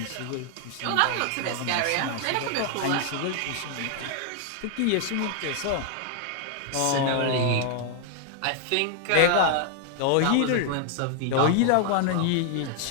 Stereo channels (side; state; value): both; different; correlation 0.00